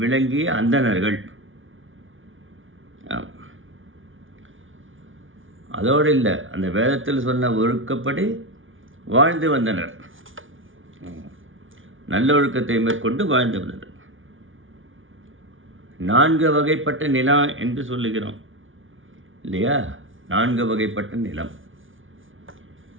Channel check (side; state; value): left; late; 0.57 ms